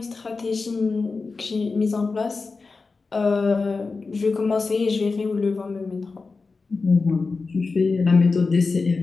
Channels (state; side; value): quieter; right; 4.2 dB